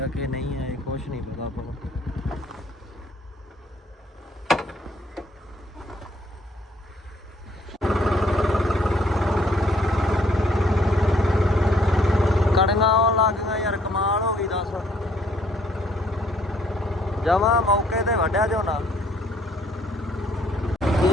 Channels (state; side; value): normal; both; correlation 0.65